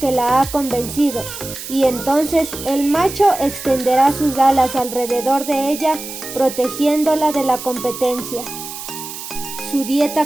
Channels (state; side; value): noise; right; hiss, 10 dB below the sound